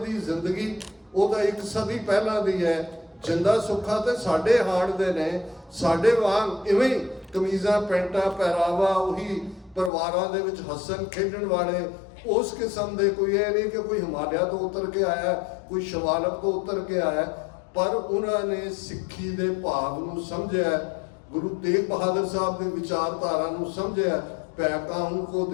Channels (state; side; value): drops out; right; at 9.9 s